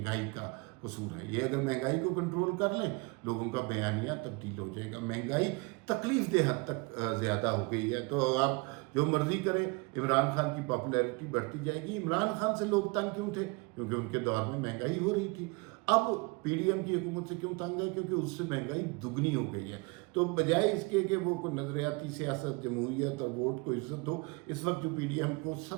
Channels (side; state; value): left; quieter; 27.9 dB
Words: का कसूर है। ये अगर महंगाई को कंट्रोल कर लें, लोगों का बयानिया तब्दील हो जाएगा। महंगाई तकलीफ दे हद तक ज़्यादा हो गई है, तो आप जो मर्जी करें, इमरान खान की पॉपुलैरिटी बढ़ती जाएगी। इमरान खान से लोग तंग क्यों थे? क्योंकि उनके दौर में महंगाई हो रही थी। अब पीडीएम की हुकूमत से क्यों तंग है? क्योंकि उससे महंगाई दुगनी हो गई है। तो बजाय इसके कि वो कोई नज़रियाती सियासत, जमहूरियत और वोट को इज्जत दो, इस वक्त जो पीडीएम को